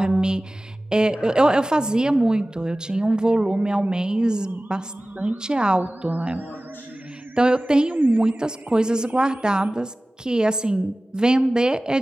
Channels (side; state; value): both; normal; correlation 0.97